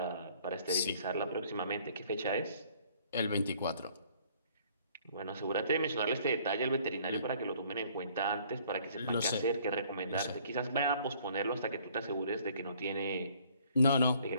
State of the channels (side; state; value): both; inverted; correlation -0.59